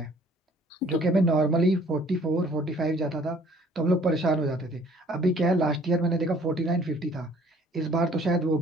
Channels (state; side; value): normal; both; correlation 0.56